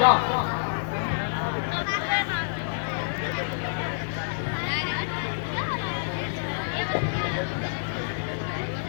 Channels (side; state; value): right; silent; digital silence